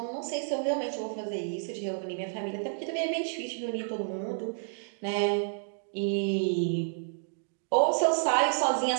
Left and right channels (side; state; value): left; silent; digital silence